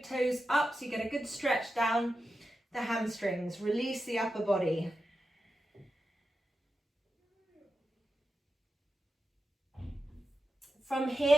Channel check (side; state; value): both; normal; correlation 0.90